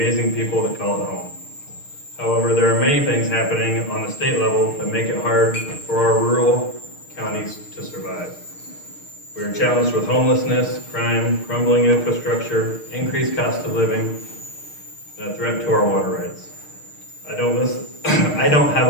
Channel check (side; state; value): right; late; 6.5 ms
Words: people that call it home. However, there are many things happening on the state level that make it hard for our rural counties to survive. We are challenged with homelessness, crime, crumbling infrastructure, increased cost of living, and a threat to our water rights. I don't have